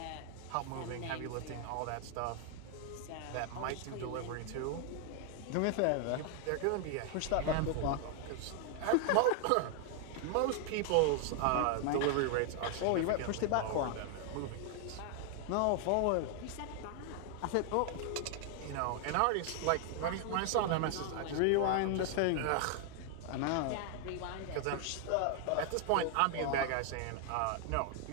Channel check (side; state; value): both; different; correlation 0.00